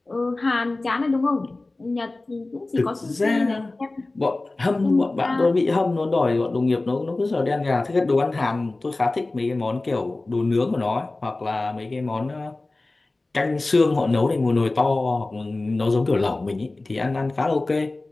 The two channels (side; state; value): right; quieter; 3.1 dB